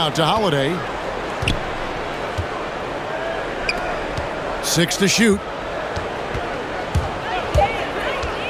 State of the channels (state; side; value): identical; both; correlation 1.00